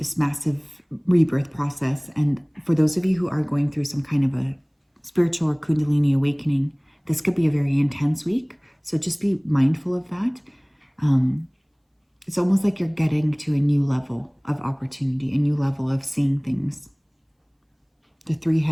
massive rebirth process. And for those of you who are going through some kind of a spiritual or Kundalini awakening, this could be a very intense week. So just be mindful of that. It's almost like you're getting to a new level of opportunity, a new level of seeing things. The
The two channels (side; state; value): both; identical; correlation 1.00